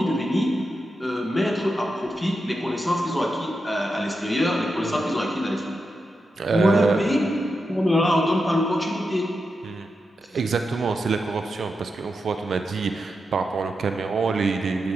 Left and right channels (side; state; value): both; normal; correlation 0.88